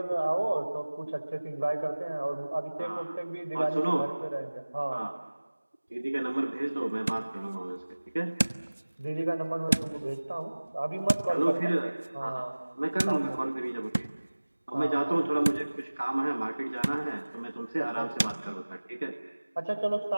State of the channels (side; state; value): both; inverted; correlation -1.00